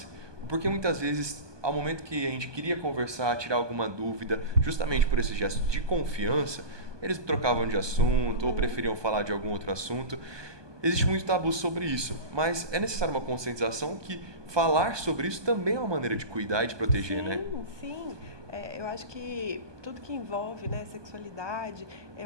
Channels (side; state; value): left; late; 1.2 ms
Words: porque muitas vezes, ao momento que a gente queria conversar, tirar alguma dúvida, justamente por esse gesto de confiança, eles trocavam de assunto ou preferiam falar de algum outro assunto. existe muito tabu sobre isso, mas é necessário uma conscientização que falar sobre isso também é uma maneira de cuidar e de proteger, né? Sim. Eu acho que tudo que envolve, né, sexualidade,